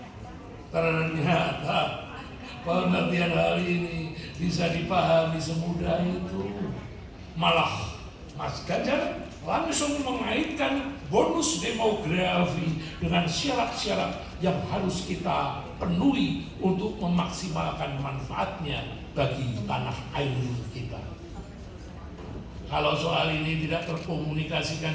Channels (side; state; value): both; identical; correlation 1.00